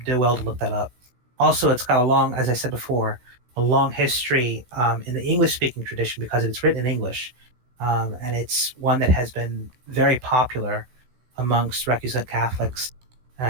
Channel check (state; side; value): late; left; 16 ms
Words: do well to look that up. Also, it's got as I said before, a long history in the English-speaking tradition because it's written in English, and it's one that has been very popular amongst recusant Catholics,